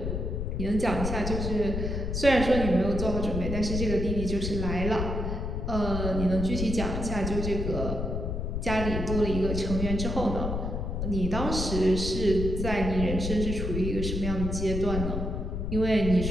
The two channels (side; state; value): left; noise; rumble, 2 dB below the sound